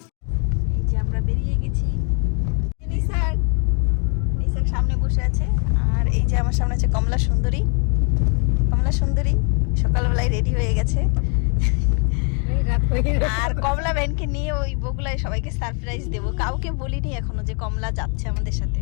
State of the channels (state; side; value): quieter; right; 39.5 dB